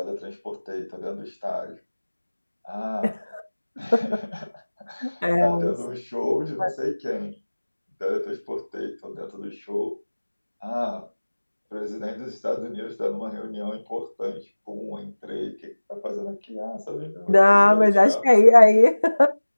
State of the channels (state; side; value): inverted; both; correlation -1.00